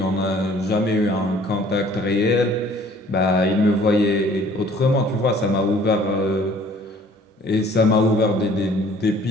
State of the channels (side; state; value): both; normal; correlation 0.54